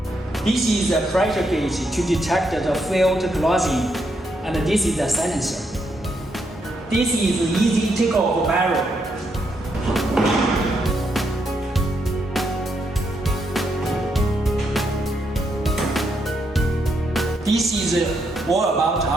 This is a pressure gauge to detect the field closing, and this is a silencer. This is easy takeoff barrel. This is all about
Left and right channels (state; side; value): normal; both; correlation 0.78